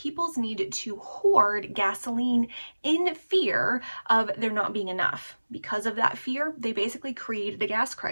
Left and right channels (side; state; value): both; inverted; correlation -1.00